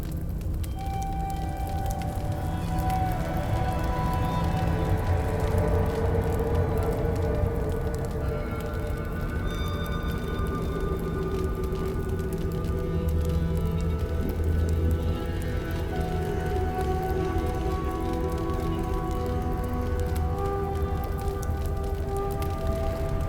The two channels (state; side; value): identical; both; correlation 1.00